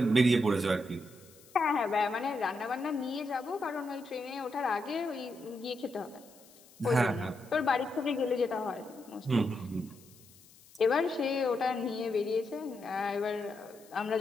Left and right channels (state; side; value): noise; left; hiss, 25 dB below the sound